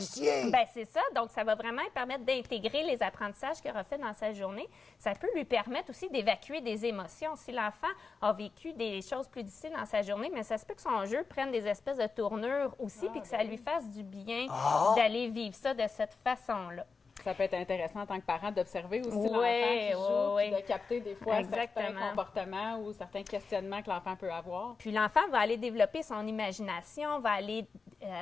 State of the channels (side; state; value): right; quieter; 4.7 dB